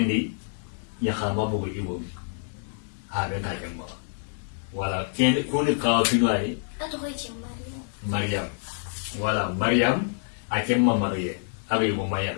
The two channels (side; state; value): right; silent; digital silence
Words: ya khama bugu ibo habe ka jamma wala ken kuni ka finai Attends, Maryam wala Maryam akemma Mariye abi mo